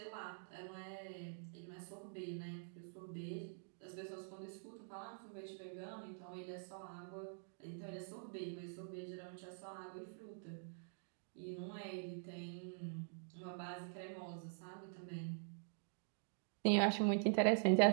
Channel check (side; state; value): left; silent; digital silence